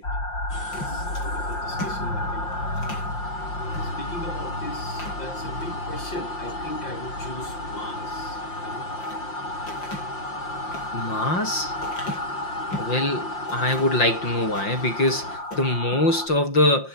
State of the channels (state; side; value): late; right; 5.7 ms